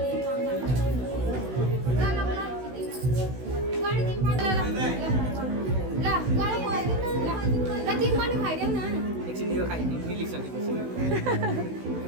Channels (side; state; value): left; late; 16 ms